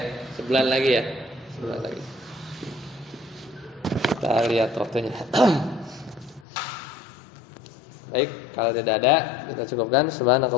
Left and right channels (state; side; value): drops out; right; at 6.5 s